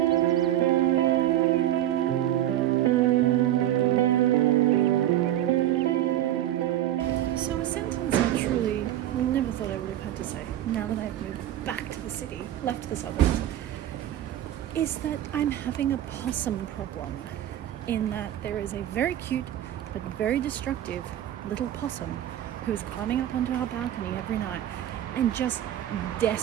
sentence I truly never thought I would have had to say, now that I've moved back to the city, left the suburbs, is that I'm having a possum problem, in that there is a very cute but very destructive little possum who is climbing up onto our balcony every night and just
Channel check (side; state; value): left; quieter; 12.4 dB